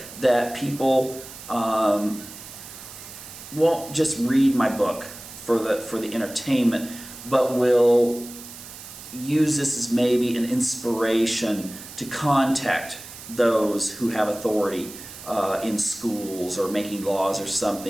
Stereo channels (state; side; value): noise; right; hiss, 14 dB below the sound